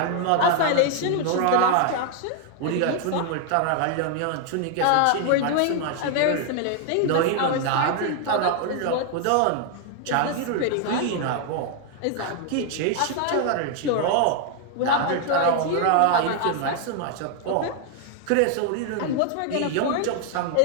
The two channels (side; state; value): both; different; correlation 0.00